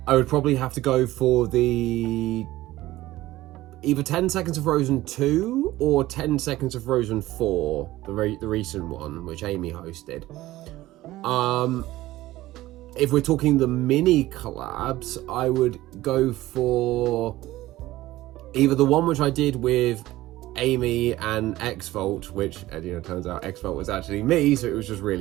I would probably have to go for the either 10 Seconds of Frozen 2 or 10 Seconds of Frozen 4, the recent one, which Amy hosted. If we're talking the mini collabs, I would go for either the one which I did with Amy and X-Volt, which, you know, turns out X-Volt was actually me, so it was just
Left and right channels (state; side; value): quieter; left; 16.6 dB